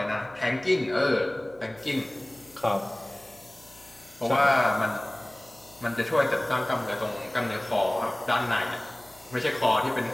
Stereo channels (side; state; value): left; noise; hum, 27 dB below the sound